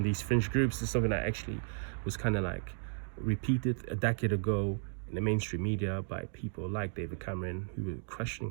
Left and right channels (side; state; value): left; silent; digital silence